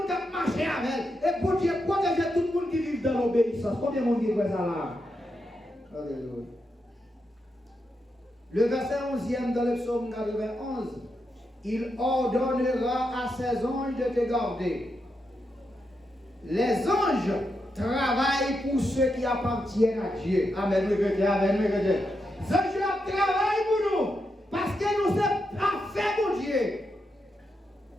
qui marche avec elle. Et bon Dieu protège tout le monde qui vit dans l'obéissance. Combien de monde qui fait ça là? Alléluia. Le verset 11e dans le psaume 91. Il ordonnera à ses anges de te garder. Les anges travaillent pour ceux qui appartiennent à Dieu. Amen, oui, amen, oui, les anges travaillent pour nous parce que nous sommes parfaits pour Dieu.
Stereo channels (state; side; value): normal; both; correlation 0.85